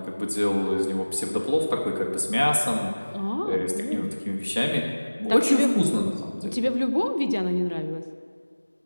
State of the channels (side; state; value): both; inverted; correlation -1.00